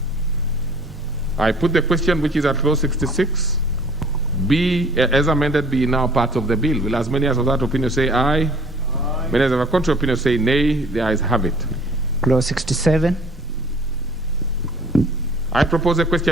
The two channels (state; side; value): normal; both; correlation 0.52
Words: I put the question, which is at clause 66, be as amended, be now part of the bill. Will as many as of that opinion say aye? Aye. Many as of a contrary opinion say nay? The ayes have it. Clause 67. I propose a